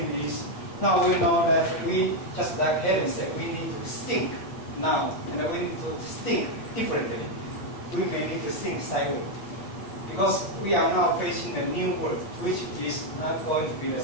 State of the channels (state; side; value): late; right; 8.5 ms